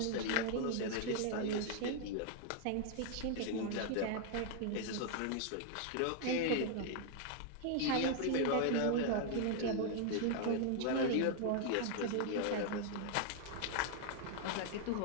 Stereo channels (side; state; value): both; different; correlation 0.00